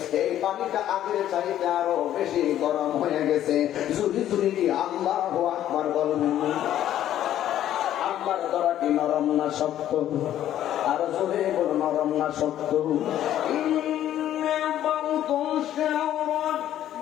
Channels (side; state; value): right; quieter; 11.8 dB